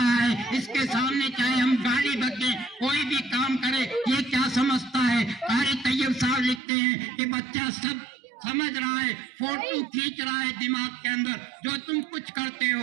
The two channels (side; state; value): left; drops out; at 6.6 s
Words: है, इसके सामने चाहे हम गाली बके कोई भी काम करे, ये क्या समझता है। कारी तैयब साहब लिखते हैं कि बच्चा सब समझ रहा है, फोटो खींच रहा है दिमाग के अंदर, जो तुम कुछ करते